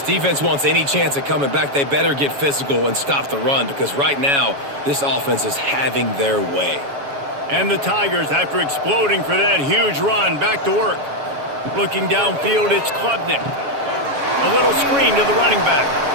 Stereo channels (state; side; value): late; left; 7.2 ms